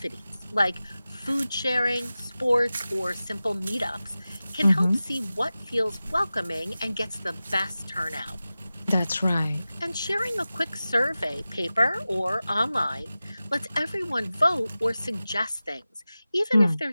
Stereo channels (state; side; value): inverted; both; correlation -0.96